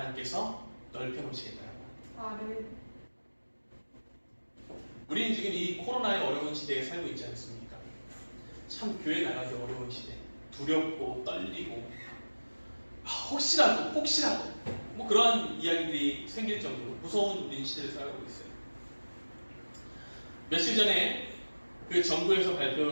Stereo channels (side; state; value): both; inverted; correlation -1.00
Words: 넓혀 놓으시겠다는 것. 아멘. 우리는 지금 이 코로나의 어려운 시대에 살고 있지 않습니까? 참 교회 나가기 어려운 시대, 두렵고 떨리고 혹시라도 뭐 그러한 이야기들이 생길 정도로 무서운 우리 시대를 살아가고 있어요. 며칠 전에 그 정부에서